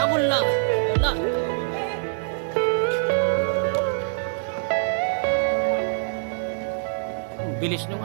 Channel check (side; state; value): left; silent; digital silence